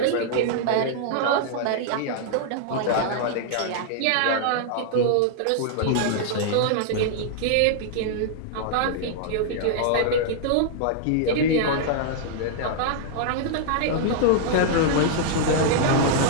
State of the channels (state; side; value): different; both; correlation -0.01